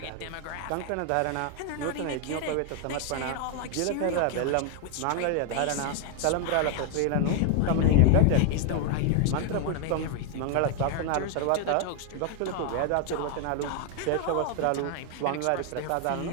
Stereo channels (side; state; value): both; different; correlation 0.01